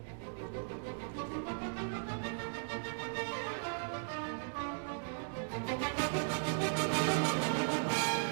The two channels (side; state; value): left; silent; digital silence